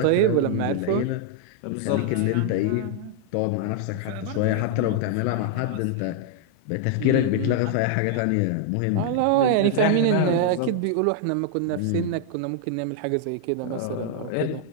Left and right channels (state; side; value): different; both; correlation 0.00